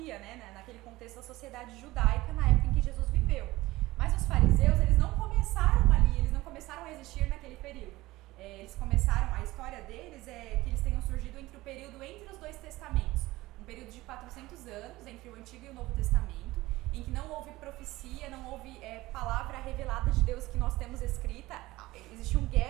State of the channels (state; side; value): quieter; left; 18.7 dB